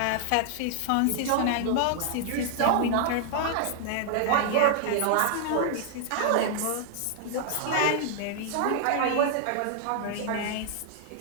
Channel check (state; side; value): different; both; correlation 0.00